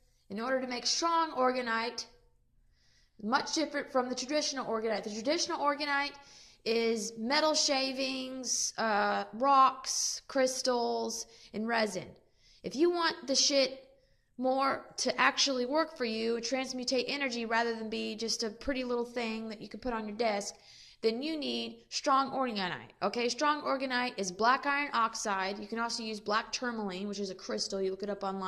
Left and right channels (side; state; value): both; identical; correlation 1.00